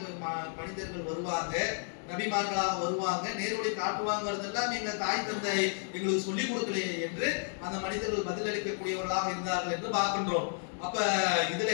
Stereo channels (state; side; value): silent; right; 56 dB below the other